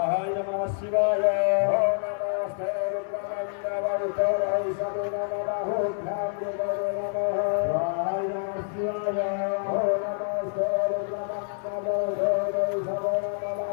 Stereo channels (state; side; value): silent; right; digital silence